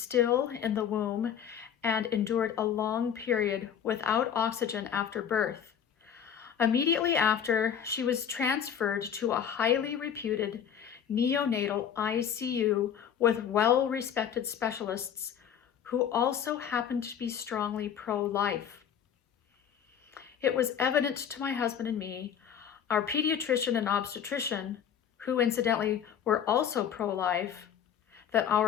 in the womb and endured a long period without oxygen after birth. Immediately after, she was transferred to a highly reputed neonatal ICU with well-respected specialists who also happened to be strongly pro-life. It was evident to my husband and me, our pediatrician and obstetrician, who incidentally were also pro-life, that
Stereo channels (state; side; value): quieter; right; 8.6 dB